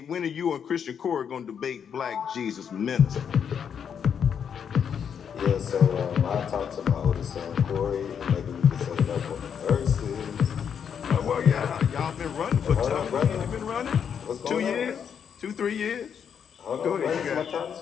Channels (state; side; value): quieter; right; 7.6 dB